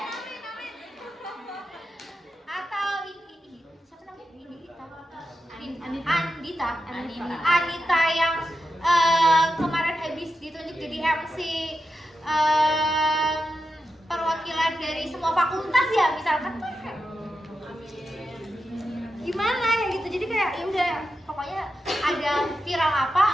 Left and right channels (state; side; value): normal; both; correlation 0.89